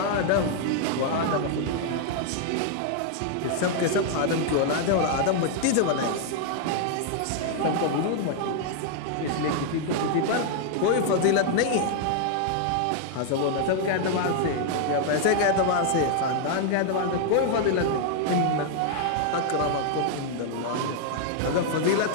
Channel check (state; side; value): different; both; correlation 0.00